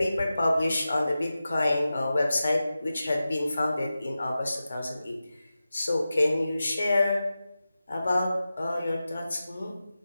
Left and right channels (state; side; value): inverted; both; correlation -0.93